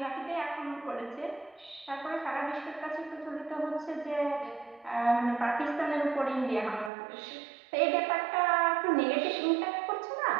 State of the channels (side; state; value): left; drops out; at 6.9 s